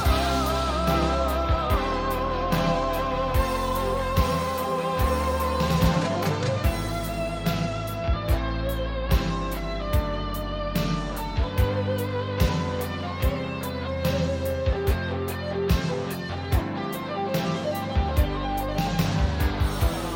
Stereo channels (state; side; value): identical; both; correlation 1.00